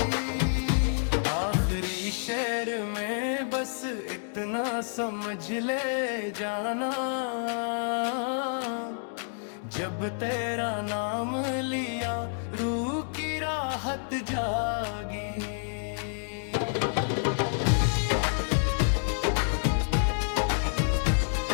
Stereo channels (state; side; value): silent; right; digital silence